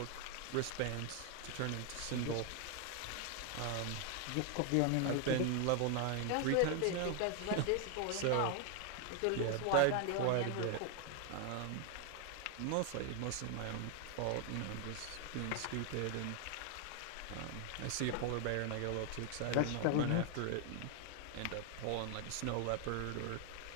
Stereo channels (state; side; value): different; both; correlation 0.00